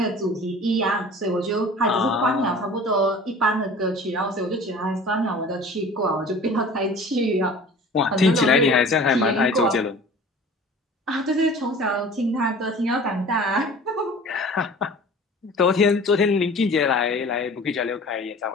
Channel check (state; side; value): normal; both; correlation 0.43